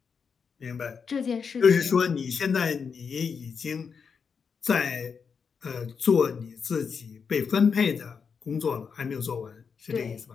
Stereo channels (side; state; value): right; quieter; 6.0 dB